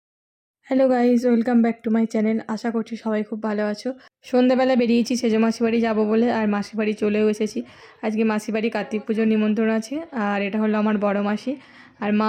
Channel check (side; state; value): both; identical; correlation 1.00